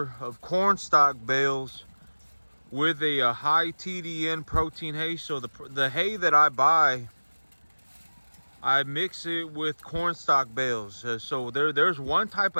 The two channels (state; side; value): inverted; both; correlation -1.00